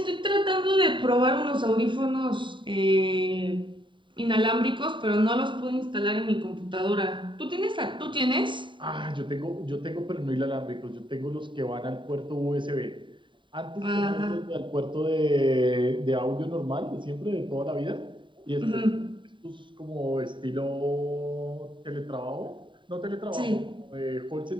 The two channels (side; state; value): left; late; 0.23 ms